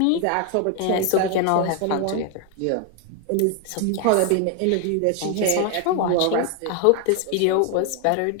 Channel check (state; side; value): different; both; correlation 0.01